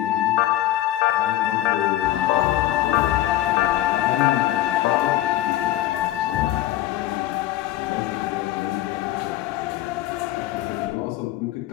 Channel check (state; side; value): quieter; right; 14.3 dB